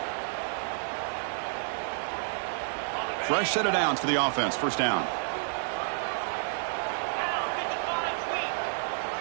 Fresh set of downs for the offense. First down.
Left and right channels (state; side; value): silent; left; digital silence